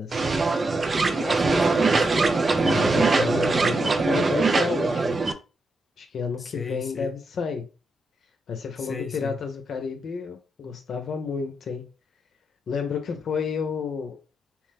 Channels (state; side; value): normal; both; correlation 0.84